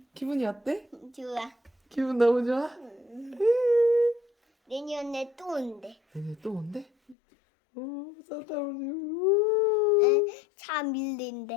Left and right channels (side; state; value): right; drops out; at 7.2 s